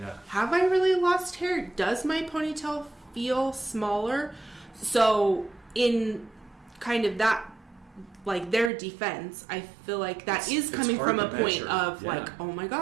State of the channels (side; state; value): left; drops out; at 8.7 s